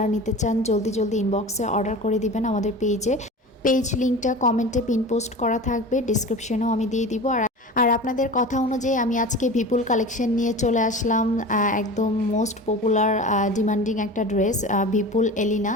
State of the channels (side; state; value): both; normal; correlation 0.34